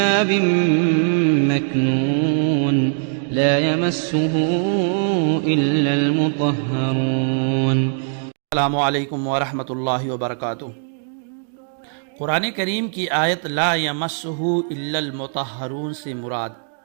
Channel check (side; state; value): left; silent; digital silence